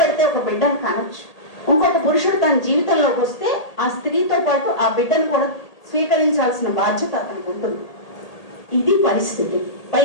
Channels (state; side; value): late; right; 1.8 ms